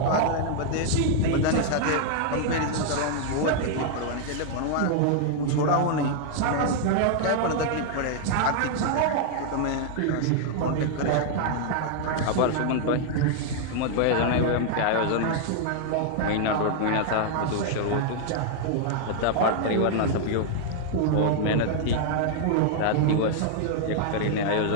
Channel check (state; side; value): different; both; correlation 0.00